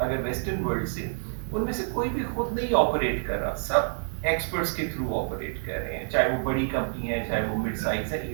ویسٹرن ورلڈ سے, ان میں سے کوئی بھی خود نہیں آپریٹ کر رہا, سب ایکسپرٹس کے تھرو آپریٹ کر رہے ہیں, چاہے وہ بڑی کمپنی ہے چاہے وہ مڈ سائز ہے,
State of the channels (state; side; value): silent; left; 60 dB below the other